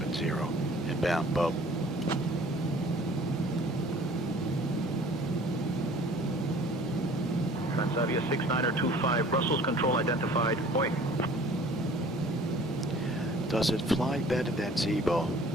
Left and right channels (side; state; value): both; normal; correlation 0.50